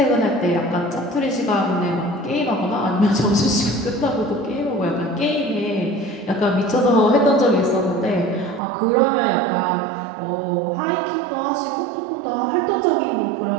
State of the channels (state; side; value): drops out; left; at 8.6 s